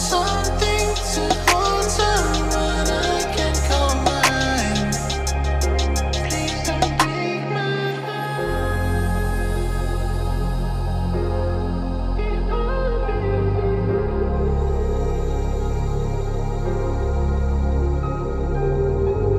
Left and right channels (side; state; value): both; identical; correlation 1.00